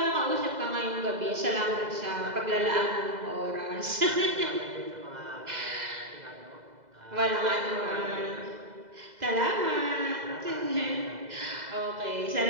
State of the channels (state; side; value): late; left; 2.0 ms